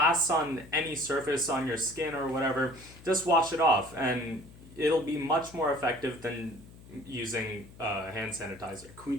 on any surface on your skin or whatever, just wash it off and it'll be much more effective than using hand sanitizer. Can we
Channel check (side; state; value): left; noise; hum, 20 dB below the sound